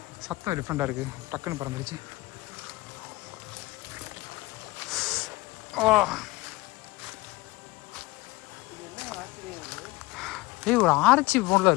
சத்தம் டிஃப்ரெண்டாக இருக்குது. டக்குன்னு பறந்துருச்சு. ஓ ஏய் ஒரு ஆர்ச்சி போல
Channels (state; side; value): quieter; right; 21.1 dB